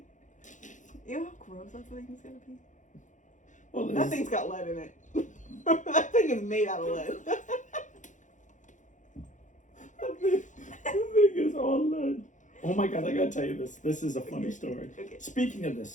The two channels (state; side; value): late; right; 0.36 ms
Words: You know how gross that thing is gonna be? Well, that thing's got lead in it. That thing is made out of lead. That thing is all lead. Oh my God, I gotta tell you this. This is a funny story. Okay. Speaking of this,